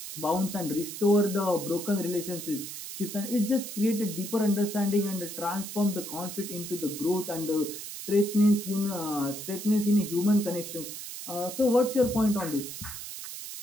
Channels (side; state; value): right; noise; hiss, 9 dB below the sound